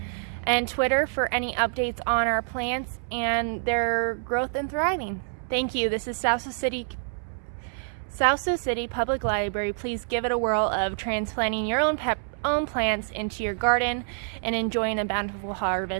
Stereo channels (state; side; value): silent; left; 60 dB below the other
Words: and Twitter for any updates on our plants and their growth and thriving. Thank you. This is Sioux City Public Library. Please give it a whirl of transplanting your own plants into your garden and enjoying a bountiful